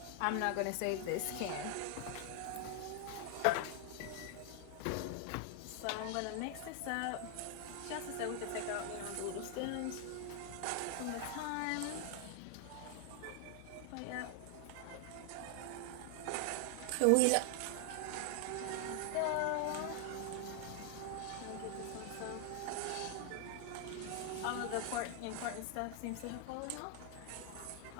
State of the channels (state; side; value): different; both; correlation 0.00